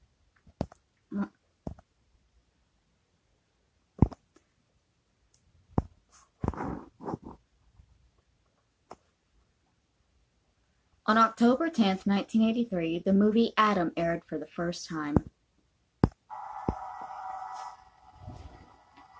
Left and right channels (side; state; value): both; identical; correlation 1.00